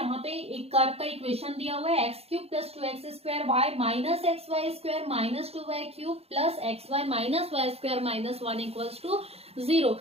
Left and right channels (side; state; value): left; late; 0.29 ms